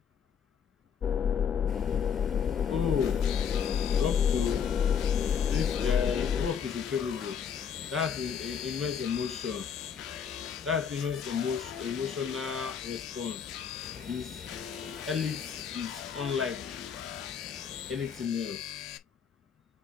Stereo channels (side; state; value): right; quieter; 7.3 dB